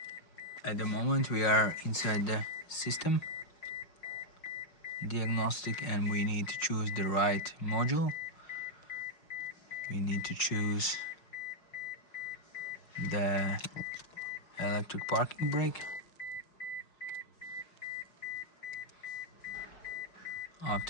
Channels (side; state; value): right; late; 5.4 ms